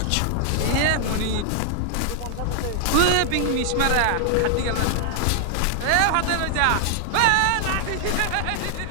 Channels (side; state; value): both; different; correlation 0.00